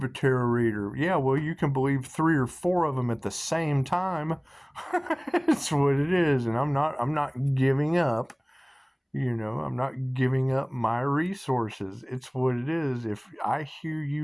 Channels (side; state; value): both; identical; correlation 1.00